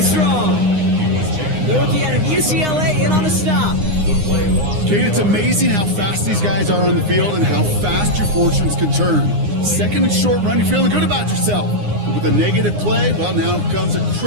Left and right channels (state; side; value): late; left; 9.7 ms